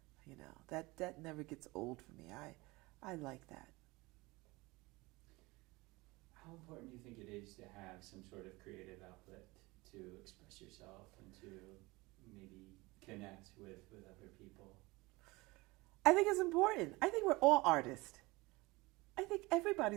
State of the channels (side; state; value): left; quieter; 22.8 dB